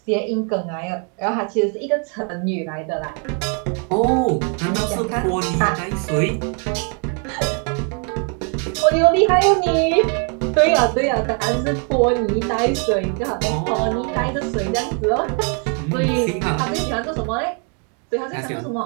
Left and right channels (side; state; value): left; quieter; 39.2 dB